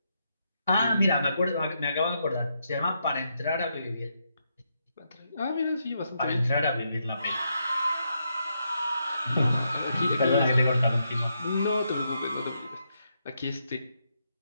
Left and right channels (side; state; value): both; inverted; correlation -0.80